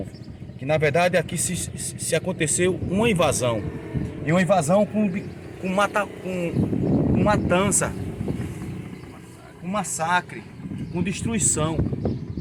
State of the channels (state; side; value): identical; both; correlation 1.00